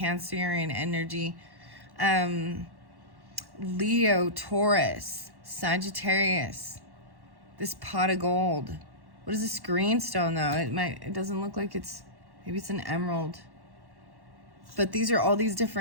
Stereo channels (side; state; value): left; late; 1.1 ms